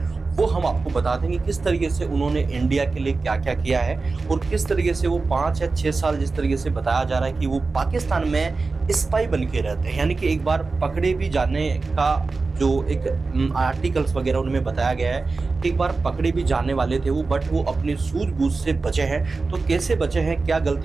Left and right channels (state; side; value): quieter; left; 3.9 dB